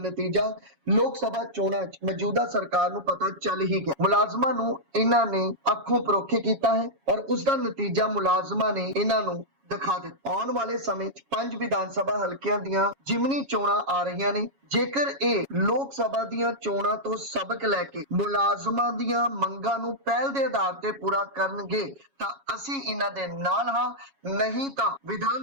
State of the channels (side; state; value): left; late; 7.2 ms